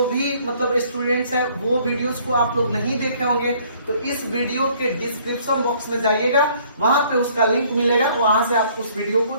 भी मतलब स्टूडेंट्स हैं वो वीडियोस को आप लोग नहीं देखे होंगे, तो इस वीडियो के डिस्क्रिप्शन बॉक्स में जाइएगा, वहां पे उसका लिंक मिलेगा, वहां से आप उस वीडियो को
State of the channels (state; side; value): inverted; both; correlation -0.60